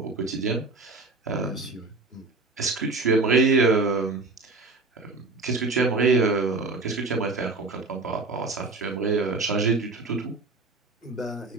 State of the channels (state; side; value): quieter; left; 3.6 dB